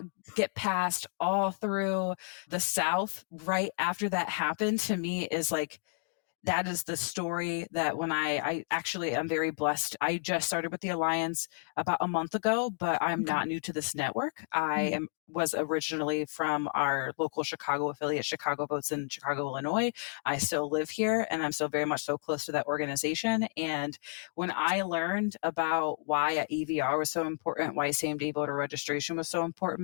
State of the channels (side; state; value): right; silent; 57 dB below the other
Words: get passed all through the South right after that happened, to me is like that is the story that when I actually am very blessed. I just started with the Alliance about a month ago, but I'm Okay. not new to this network. I Mhm. am was originally from our local Chicago affiliate, Chicago Votes in Chicago, Illinois. I still live here and I'm still very much so close to that organization. And when I learned about why a EVR was so important, why same day voter registration was so